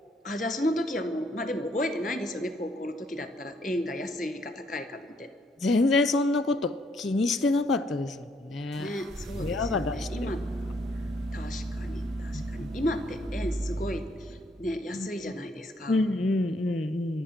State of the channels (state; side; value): normal; both; correlation 0.70